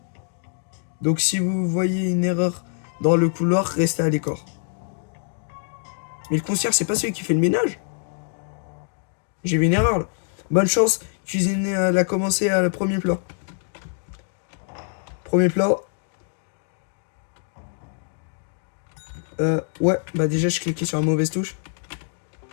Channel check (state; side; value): silent; right; 62 dB below the other